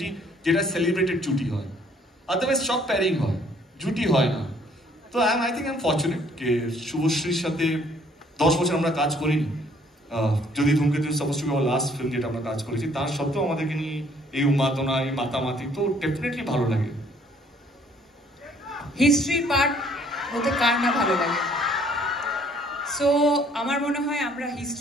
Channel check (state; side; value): normal; both; correlation 0.61